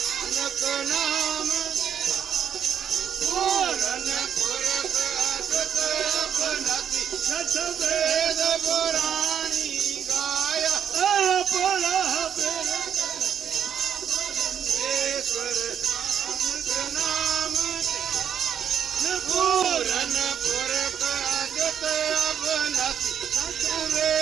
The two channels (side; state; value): left; quieter; 8.6 dB